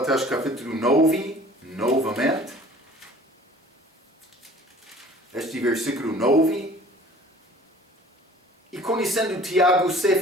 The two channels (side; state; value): both; normal; correlation 0.49